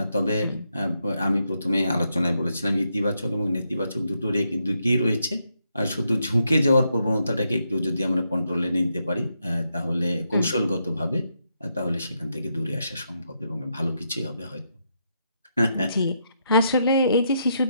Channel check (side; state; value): both; inverted; correlation -0.80